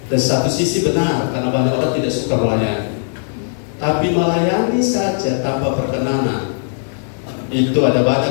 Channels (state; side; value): silent; right; digital silence